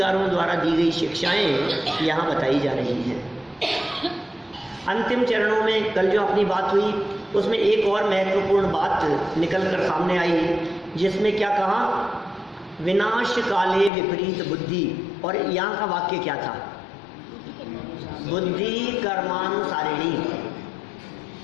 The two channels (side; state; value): right; drops out; at 13.9 s